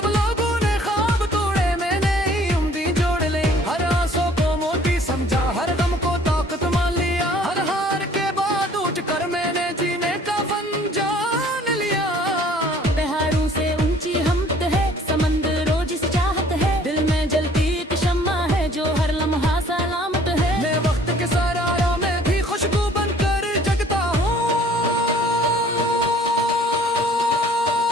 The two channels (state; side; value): normal; both; correlation 0.55